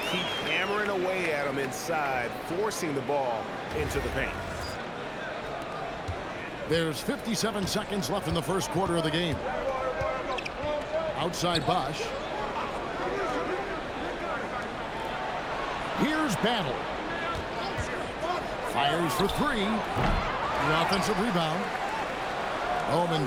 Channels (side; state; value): both; identical; correlation 1.00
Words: keep hammering away at him inside, forcing the ball into the paint. There's 57 seconds left in the first quarter of the game. Outside Bosch. Here's Battle. Fires for three. The offensive rebound.